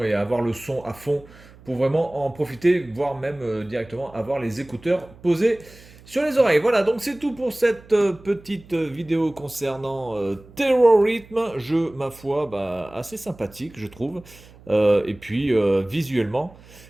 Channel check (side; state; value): right; noise; hum, 23 dB below the sound